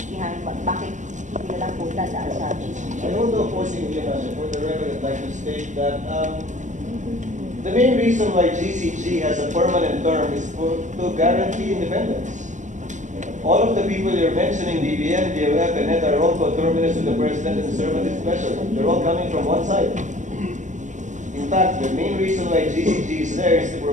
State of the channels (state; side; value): late; left; 0.36 ms